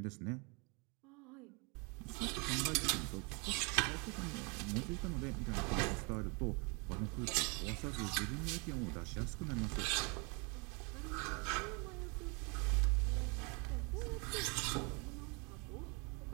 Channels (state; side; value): quieter; left; 31.9 dB